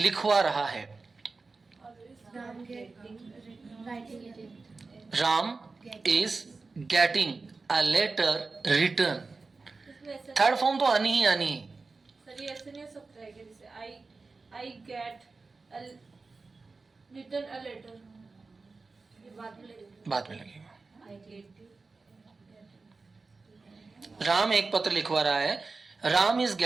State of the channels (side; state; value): left; quieter; 4.0 dB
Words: रहा है। Ram is getting a letter written. Third form तो आनी ही आनी है। सर ये ऐसे नहीं हो सकता है कि जैसे I get written a letter, ये बाद में लगेगा। राम एक पत्र लिखवा रहा है। Ram is